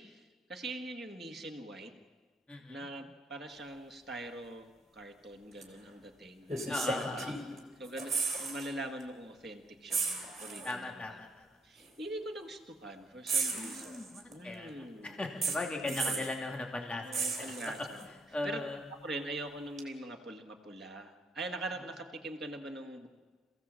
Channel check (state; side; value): normal; both; correlation 0.70